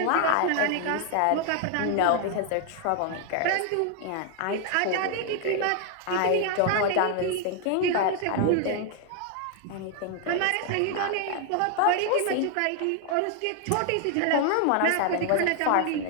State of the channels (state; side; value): different; both; correlation 0.00